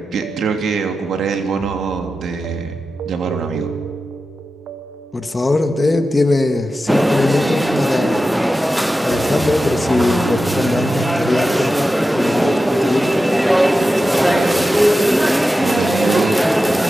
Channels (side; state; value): both; normal; correlation 0.92